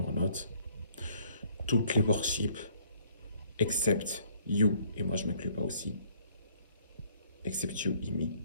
toutes les worships, except you, et moi je m'inclus pas aussi, except you, Imi,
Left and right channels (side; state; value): both; inverted; correlation -0.61